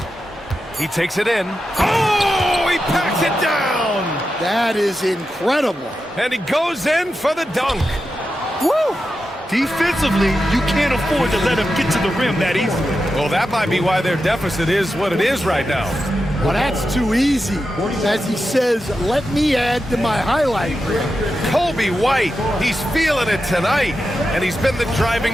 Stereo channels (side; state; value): both; normal; correlation 0.90